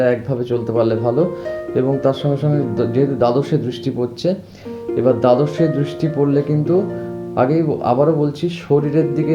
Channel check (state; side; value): identical; both; correlation 1.00